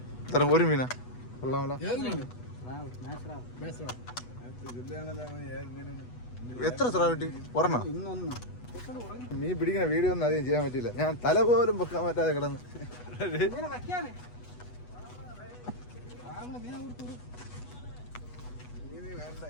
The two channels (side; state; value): right; late; 8.2 ms